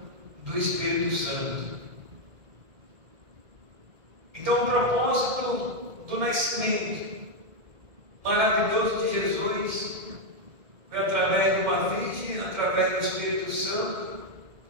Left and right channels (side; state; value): left; late; 1.7 ms